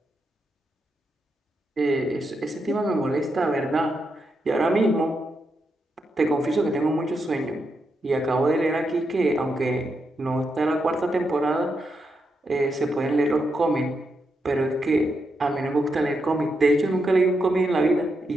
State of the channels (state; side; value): normal; both; correlation 0.83